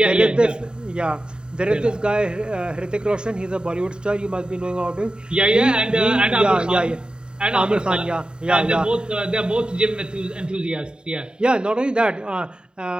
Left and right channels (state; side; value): late; left; 0.049 ms